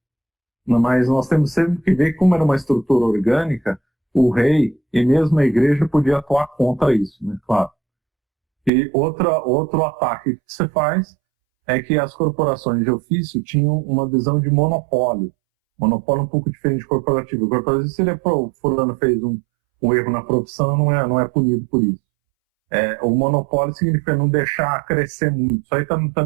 Mas nós temos sempre que ver que, como era uma estrutura orgânica, o rei e mesmo a igreja podia atuar contra isso, né? Claro. E outro ataque que se faz é que as corporações de ofício tinham uma visão de monopólio. Monopólio um pouco diferente de corporativo. O corporativo, se o fulano fez um erro na profissão, não é punido por isso. O monopólio significa não deixar crescer muito. Isso aí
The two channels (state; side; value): drops out; left; at 8.7 s